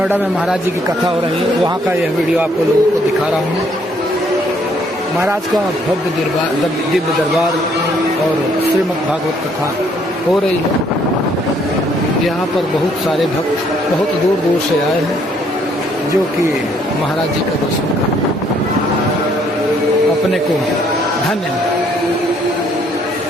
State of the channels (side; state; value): both; normal; correlation 0.66